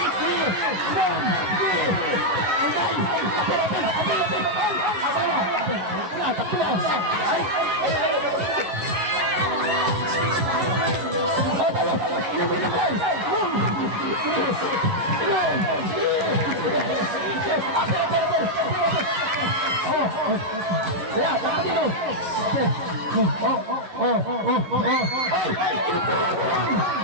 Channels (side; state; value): left; late; 11 ms